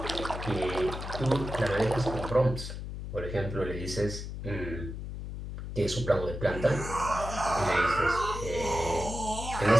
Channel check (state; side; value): noise; left; hum, 7 dB below the sound